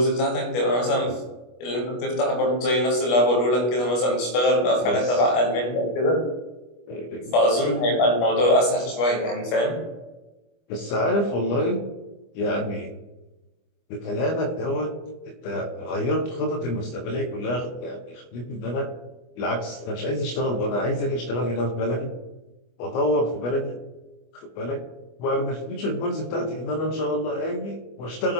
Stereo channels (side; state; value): right; late; 25 ms